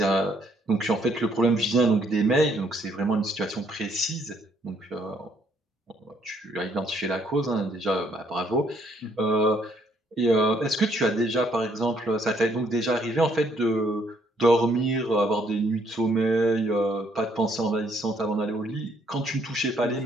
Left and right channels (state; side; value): normal; both; correlation 0.68